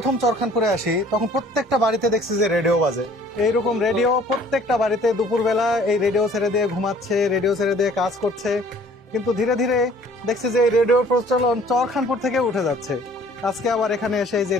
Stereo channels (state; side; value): normal; both; correlation 0.54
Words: চরখানপুরে আসি তখন প্রত্যেকটা বাড়িতে দেখছি যে রেডিও বাজে। এইরকম রেডিও প্রত্যেকটা বাড়িতে দুপুরবেলা এই রেডিও ছেড়ে দিয়ে ঘুমাচ্ছে, রেডিও ছেড়ে দিয়ে কাজ করছে। কিন্তু ধীরে ধীরে দেখছি যে এই রেডিওর প্রচলন চরখানপুর থেকে উঠে যাচ্ছে। আজকে আবার এখানে এসে এই যে